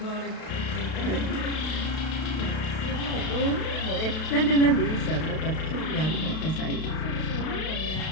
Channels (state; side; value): late; right; 32 ms